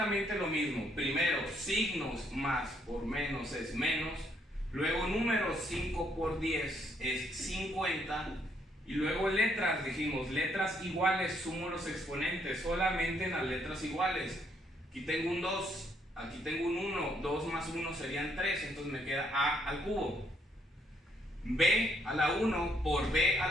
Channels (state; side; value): normal; both; correlation 0.71